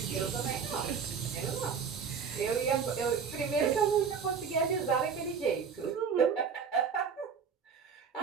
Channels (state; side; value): quieter; left; 6.3 dB